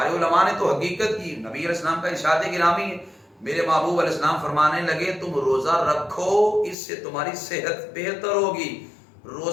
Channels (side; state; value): right; drops out; at 6.8 s